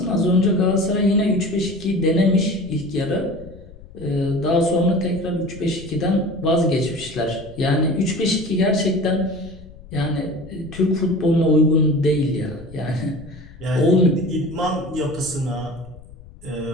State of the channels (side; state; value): left; noise; rumble, 20 dB below the sound